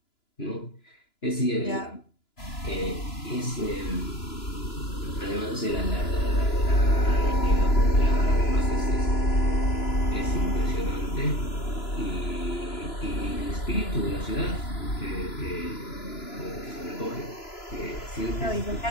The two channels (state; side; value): late; right; 2.9 ms